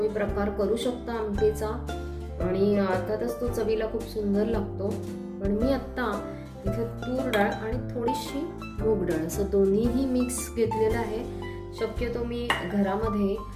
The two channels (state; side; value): identical; both; correlation 1.00